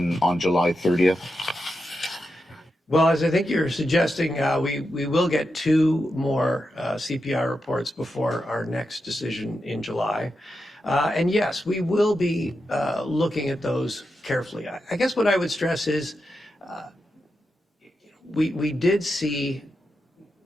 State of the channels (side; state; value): both; normal; correlation 0.87